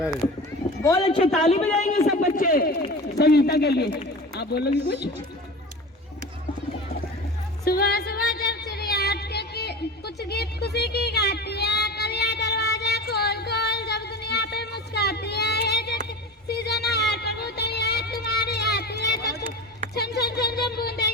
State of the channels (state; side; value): normal; both; correlation 0.32